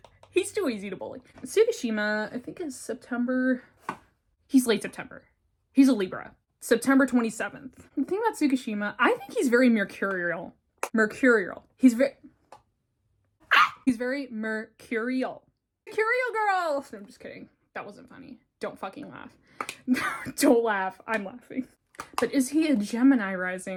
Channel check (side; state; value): both; identical; correlation 1.00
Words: He's too easy to bully. Tsukushima, I think is September. He's late September. He's a Libra. September 27th. The thing about Tsukushima, I think he's very mercurial. He's very mercurial. Mercurial girl! No, I'm just kidding. That wasn't funny. Don't fucking laugh. Don't laugh. I'm laughing. But is he a Gemini